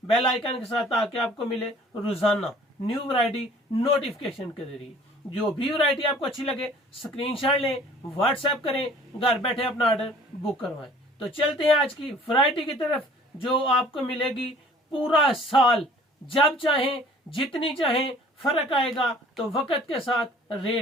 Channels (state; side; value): normal; both; correlation 0.52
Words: बेल आइकन के साथ ताकि आपको मिले रोजाना न्यू वैरायटी नोटिफिकेशन के जरिए। जो भी वैरायटी आपको अच्छी लगे स्क्रीनशॉट लें, व्हाट्सएप करें, घर बैठे अपना ऑर्डर बुक करवाएं। तो चलते हैं आज की वैरायटी की तरफ जो आपको मिलेगी पूरा साल, जब चाहें जितनी चाहें। फर्क आएगा तो वक्त के साथ